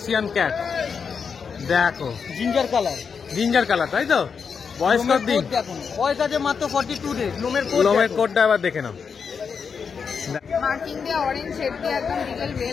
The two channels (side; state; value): right; quieter; 6.1 dB